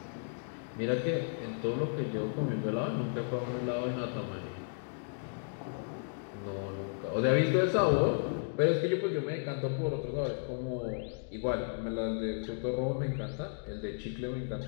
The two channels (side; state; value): right; silent; digital silence